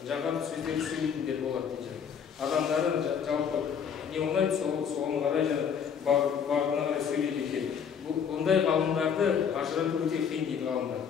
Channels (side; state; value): right; quieter; 7.3 dB